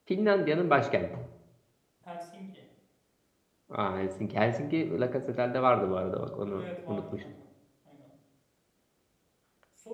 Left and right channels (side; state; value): both; identical; correlation 1.00